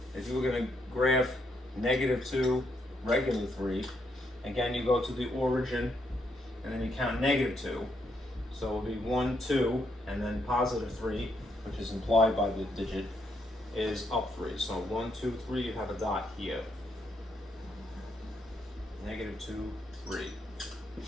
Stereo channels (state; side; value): normal; both; correlation 0.76